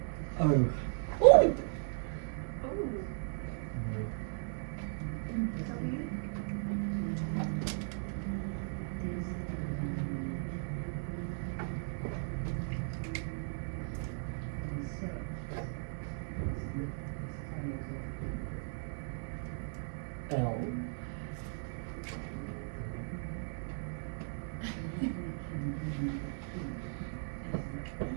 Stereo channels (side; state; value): left; silent; digital silence